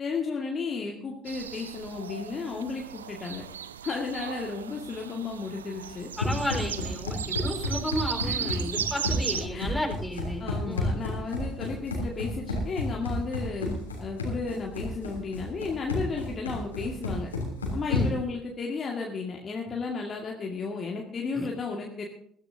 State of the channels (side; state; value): both; normal; correlation 0.48